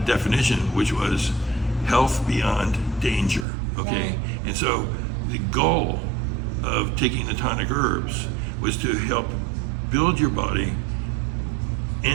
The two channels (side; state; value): left; drops out; at 3.5 s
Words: which was health beyond danger, okay? And so the goal of taking the tonic herbs was to help build your body